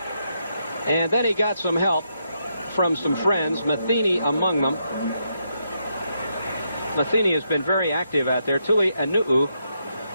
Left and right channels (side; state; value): both; inverted; correlation -0.80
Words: And then he got some help from some friends, Matheny among them. Matheny has been very active out there. Tuli Anu'u,